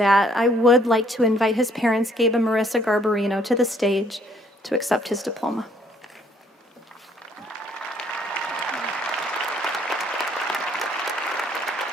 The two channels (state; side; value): normal; both; correlation 0.64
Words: I would like to invite his parents, Gabe and Marissa Garbarino, to the stage to accept his diploma.